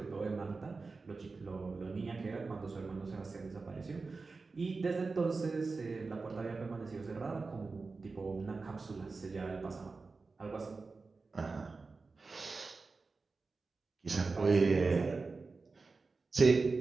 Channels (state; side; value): quieter; left; 4.1 dB